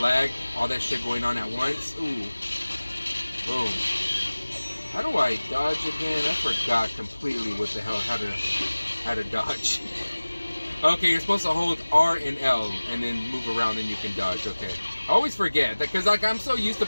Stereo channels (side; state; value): both; inverted; correlation -1.00